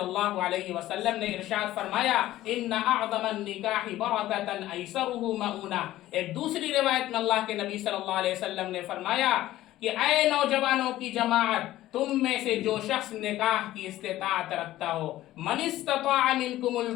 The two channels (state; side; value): quieter; right; 15.0 dB